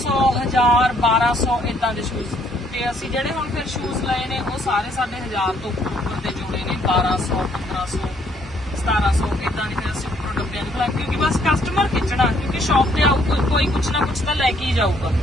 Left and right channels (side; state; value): both; normal; correlation 0.67